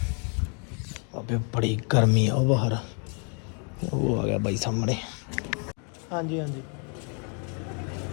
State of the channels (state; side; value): quieter; right; 39.5 dB